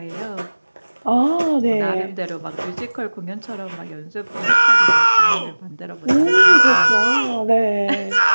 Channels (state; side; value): inverted; both; correlation -1.00